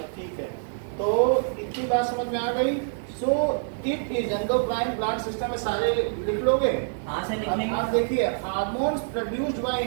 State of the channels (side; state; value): left; silent; digital silence